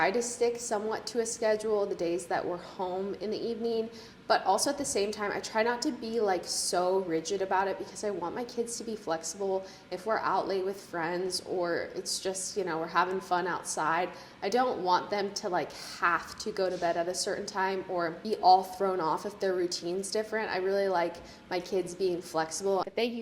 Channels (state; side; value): identical; both; correlation 1.00